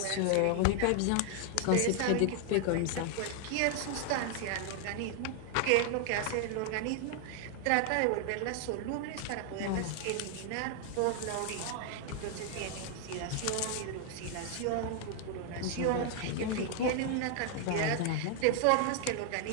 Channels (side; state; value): both; different; correlation 0.00